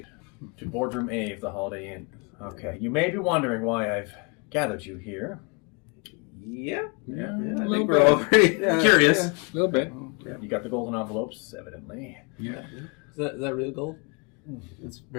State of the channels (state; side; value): quieter; right; 33.1 dB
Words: to Boardroom A of the Holiday Inn. Okay, you may be wondering why I've gathered you here. Yeah. I think we're all pretty curious. Yeah, a little bit. Yeah, you got the golden envelopes, evidently. Yeah. Is that real gold? It's